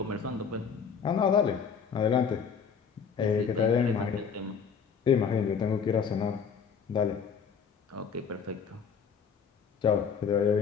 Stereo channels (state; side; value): quieter; right; 6.5 dB